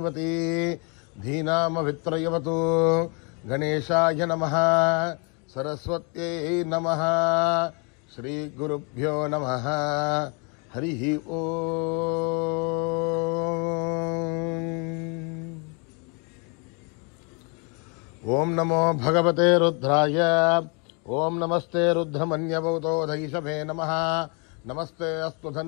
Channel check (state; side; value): quieter; right; 34.3 dB